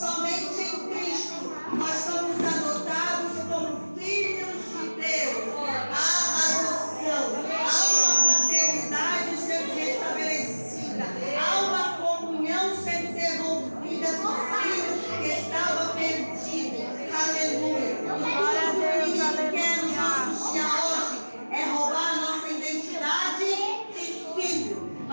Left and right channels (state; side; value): inverted; both; correlation -1.00